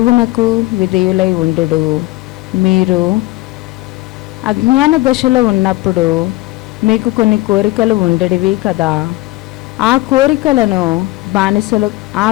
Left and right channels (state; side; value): quieter; right; 19.0 dB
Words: విధేయులై ఉండుడు. మీరు అజ్ఞాన దశలో ఉన్నప్పుడు మీకు కొన్ని కోరికలు ఉండేవి కదా. ఆ